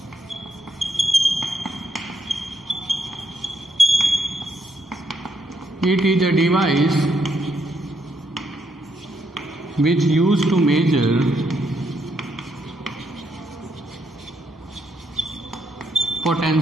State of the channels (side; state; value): both; normal; correlation 0.76